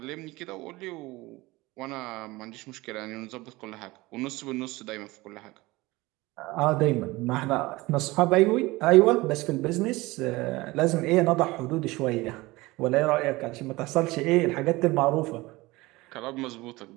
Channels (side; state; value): left; quieter; 21.0 dB